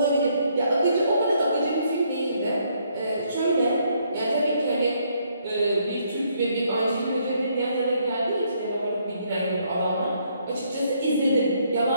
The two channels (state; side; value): inverted; both; correlation -0.71